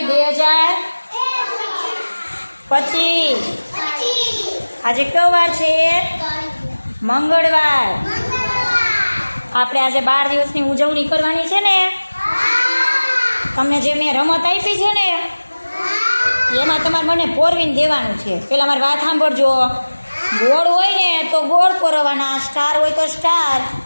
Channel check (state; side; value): inverted; both; correlation -1.00